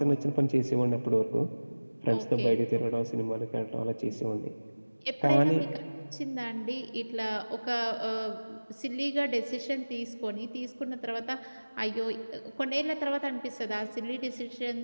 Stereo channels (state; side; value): inverted; both; correlation -1.00